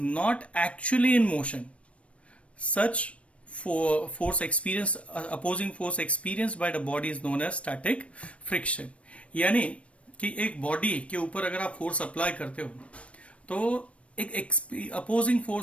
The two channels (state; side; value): late; right; 0.062 ms